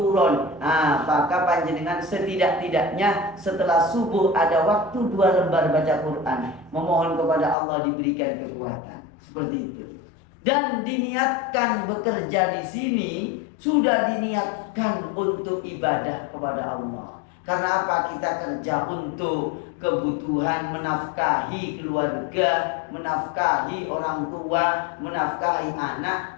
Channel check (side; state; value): right; drops out; at 7.6 s